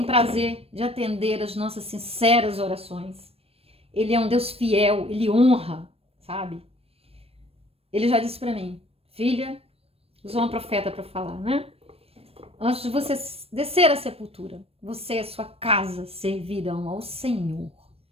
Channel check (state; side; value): late; left; 0.28 ms